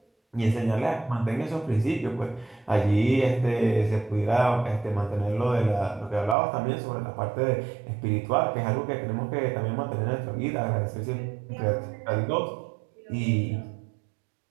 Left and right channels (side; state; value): left; drops out; at 6.4 s